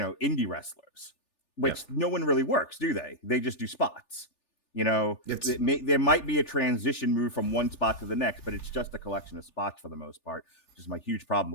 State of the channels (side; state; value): right; late; 3.4 ms